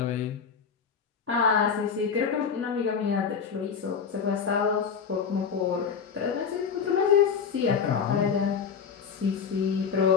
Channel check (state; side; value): quieter; right; 6.5 dB